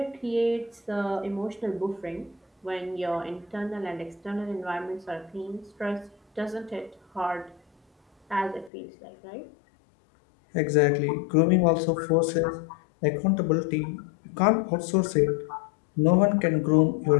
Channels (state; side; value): drops out; right; at 8.7 s